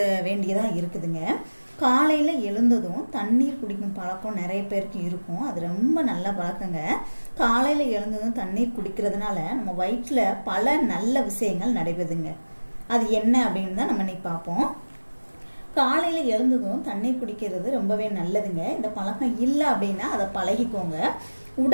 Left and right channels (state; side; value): inverted; both; correlation -1.00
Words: வேண்டியதா இருக்குதுங்க. காலையில எழுந்ததும் தண்ணீர் குடிக்கும் பழக்கம் நிறைய பேருக்கு இருக்கும். அது ரொம்ப நல்ல பழக்கங்க. காலையில எழுந்ததும் தண்ணீர் குடிக்கிறதுனால நம்ம வயிற்றுல பல நல்ல விஷயங்கள் நடைபெறுதுங்க. அது என்ன அப்படின்னு தான் நம்ம இன்னைக்கு பார்ப்போம். காலையில எழுந்ததும் தண்ணீர் குடிக்கிறது ரொம்பவே நல்லதுங்க. இந்த பழக்கம் இல்லை அப்படின்னா அதை பழகிக்கோங்க.